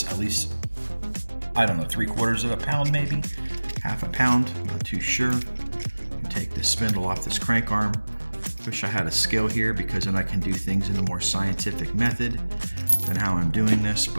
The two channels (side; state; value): both; inverted; correlation -1.00